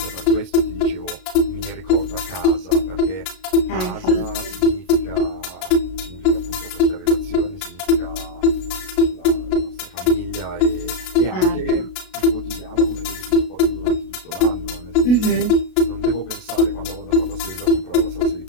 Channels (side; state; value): right; late; 33 ms